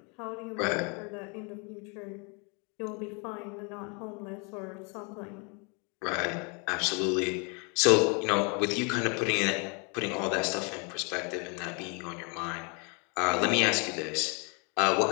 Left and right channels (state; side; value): quieter; right; 33.5 dB